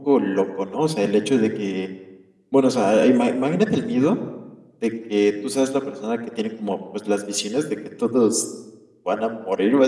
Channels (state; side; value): identical; both; correlation 1.00